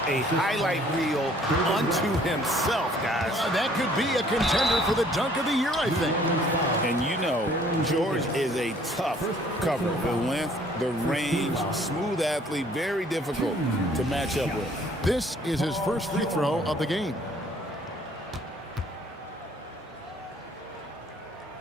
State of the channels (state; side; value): normal; both; correlation 0.59